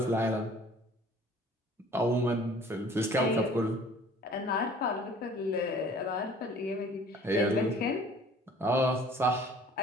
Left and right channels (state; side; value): normal; both; correlation 0.51